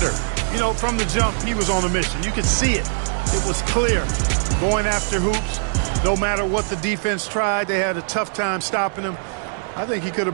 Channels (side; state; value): left; silent; digital silence